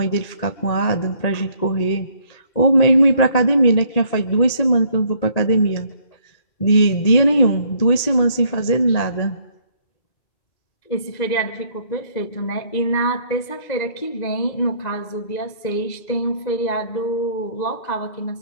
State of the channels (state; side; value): late; right; 1.9 ms